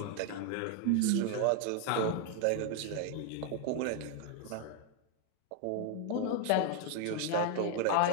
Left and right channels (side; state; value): both; different; correlation 0.00